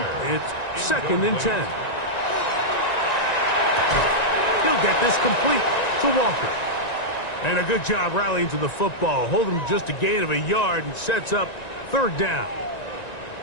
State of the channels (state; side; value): late; right; 1.9 ms